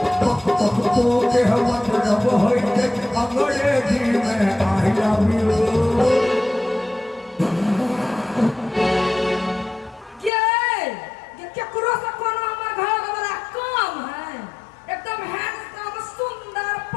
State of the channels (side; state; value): right; drops out; at 10.3 s